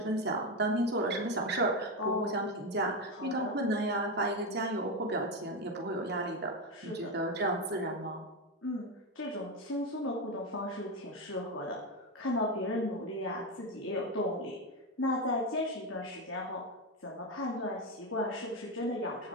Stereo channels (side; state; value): both; normal; correlation 0.12